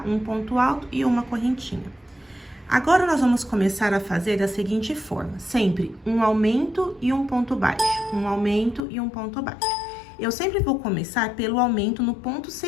Um ponto alto e uma correntinha. Agora, nós vamos começar a fazer da seguinte forma, sempre um aumento e um ponto baixo, um aumento e um ponto baixo. Eu sempre vou começar pelo aumento no ponto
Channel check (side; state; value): right; drops out; at 8.8 s